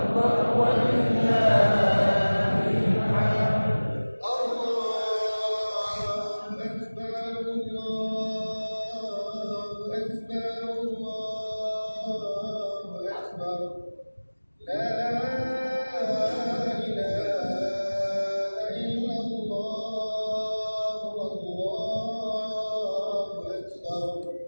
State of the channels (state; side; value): inverted; both; correlation -1.00